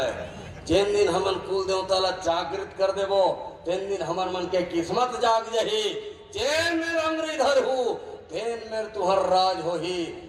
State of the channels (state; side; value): identical; both; correlation 1.00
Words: है। जिन दिन हमन कुल देवता ला जागृत कर देवो, तीन दिन हमर मन के किस्मत जाग जही। चैन में अंग्री धर हूँ, तेन में तुहर राज हो ही।